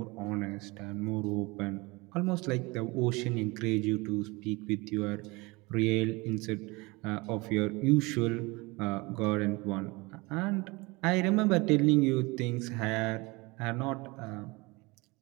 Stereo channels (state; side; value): quieter; left; 24.5 dB